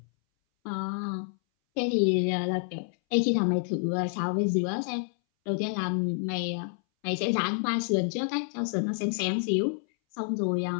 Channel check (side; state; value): right; silent; 59 dB below the other